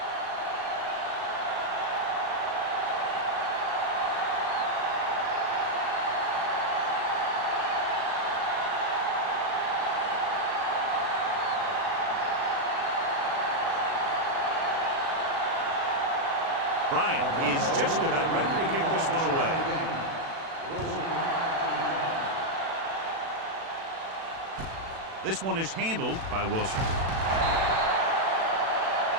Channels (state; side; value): late; left; 36 ms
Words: Bryant is just about ready to kick this one away. This one is handled by Wilson.